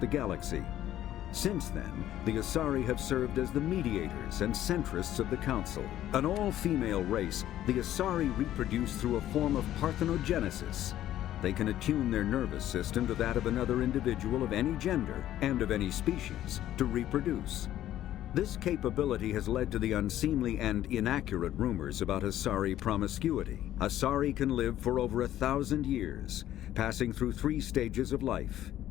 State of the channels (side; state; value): right; quieter; 12.7 dB